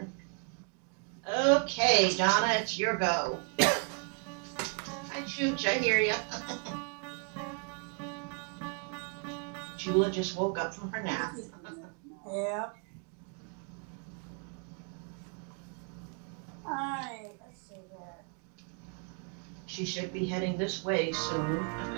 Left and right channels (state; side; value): quieter; left; 38.8 dB